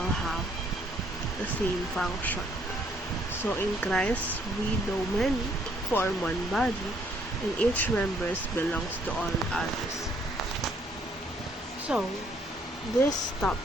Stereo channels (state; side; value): normal; both; correlation 0.66